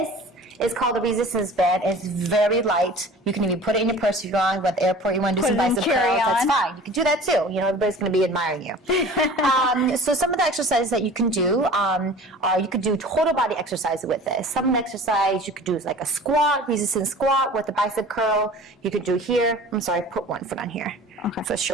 is called a resistance band. It's very light. You can even put it in your purse if you want. At the airport, you want to do some bicep curls, that's fine. You can do that too. You know, everybody's going to be admiring you. So some of the exercises that you can do are you could do total body exercise with this. Some of the exercise you could do is like a squat, resistance squat with a bicep curl. You could do here. I'm sorry, put one foot on here. Okay. For a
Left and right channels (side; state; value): both; normal; correlation 0.42